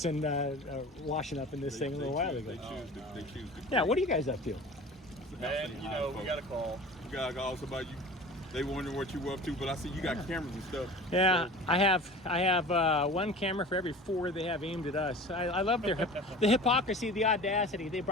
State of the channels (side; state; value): both; normal; correlation 0.39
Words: washing up in this thing a little while ago. They choose to. Yeah, what are you guys up to? And, you know, we got a call. We got calls about you. They wondering what you were up to, but I see you got cameras and stuff. Yeah, So, I have one camera for every 4 they have aimed at us. I love their the hypocrisy, the audacity. They